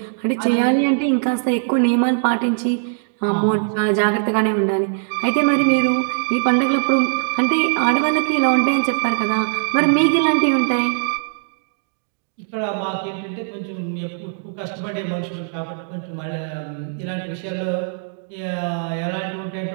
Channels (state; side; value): silent; left; digital silence